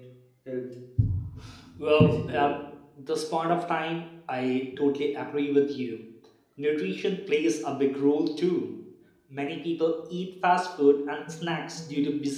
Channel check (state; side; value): identical; both; correlation 1.00